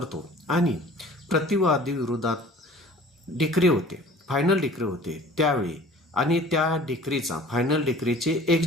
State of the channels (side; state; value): both; normal; correlation 0.47